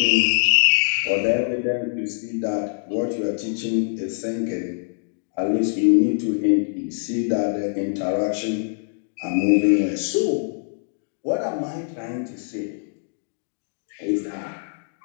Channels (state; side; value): silent; right; digital silence